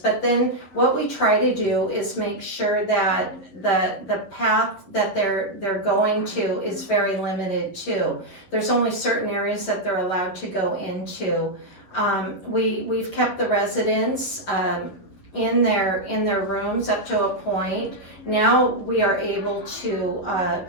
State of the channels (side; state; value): right; late; 11 ms